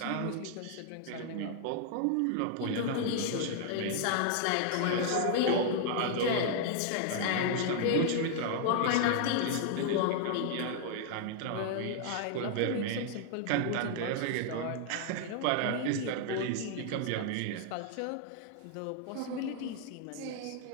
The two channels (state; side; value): different; both; correlation 0.00